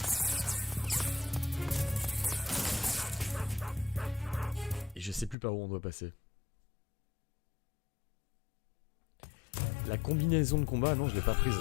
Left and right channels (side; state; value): right; drops out; at 5.4 s